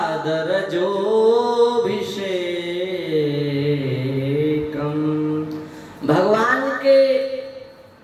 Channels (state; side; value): identical; both; correlation 1.00